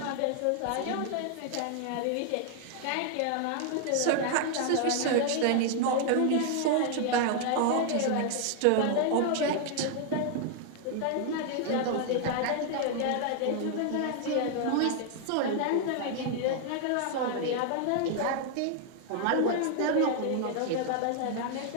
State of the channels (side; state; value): both; different; correlation 0.00